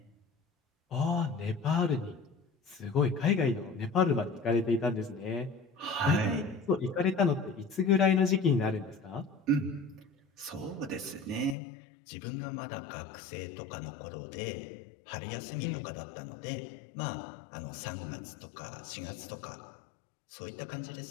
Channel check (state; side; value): drops out; right; at 11.6 s